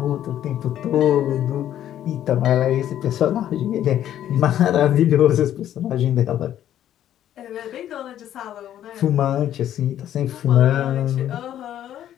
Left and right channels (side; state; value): right; quieter; 11.3 dB